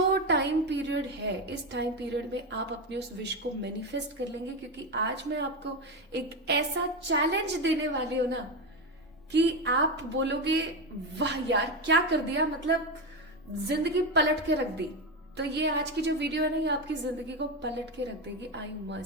टाइम पीरियड है, इस टाइम पीरियड में आप अपने उस विश को मैनिफेस्ट कर लेंगे, क्योंकि आज मैं आपको एक ऐसा चैलेंज देने वाली हूं ना कि आप बोलोगे वाह यार क्या कर दिया, मतलब जिंदगी पलट के रख दी। तो ये आज की जो वीडियो है ना ये आपकी जिंदगी को पलट के रख देगी, आई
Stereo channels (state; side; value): normal; both; correlation 0.14